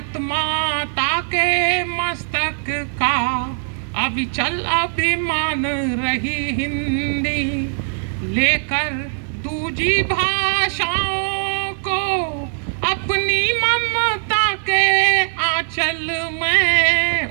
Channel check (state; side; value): silent; left; digital silence